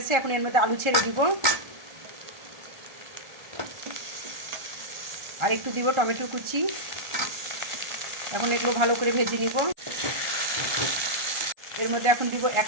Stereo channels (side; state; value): left; late; 1.4 ms